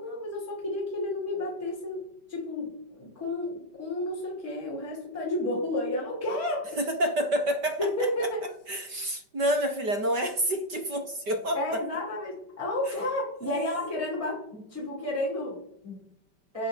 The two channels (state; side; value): late; left; 5.1 ms